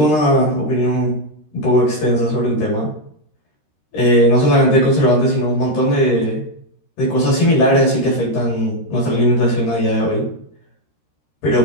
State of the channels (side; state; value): right; late; 13 ms